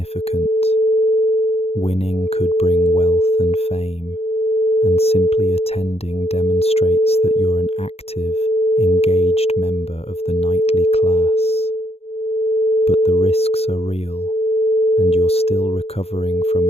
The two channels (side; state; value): right; late; 0.29 ms